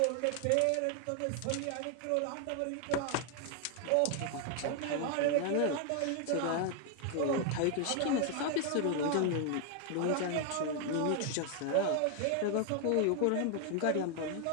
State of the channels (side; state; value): both; different; correlation 0.00